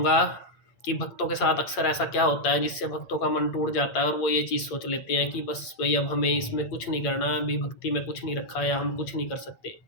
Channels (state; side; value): late; right; 8.7 ms